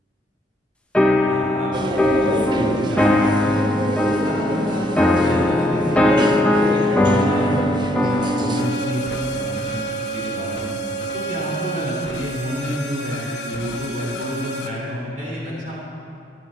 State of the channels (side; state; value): both; normal; correlation 0.69